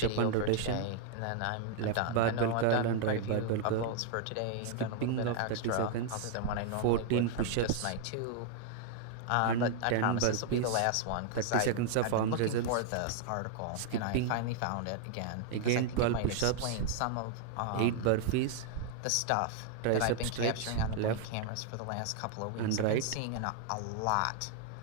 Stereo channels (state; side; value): different; both; correlation 0.00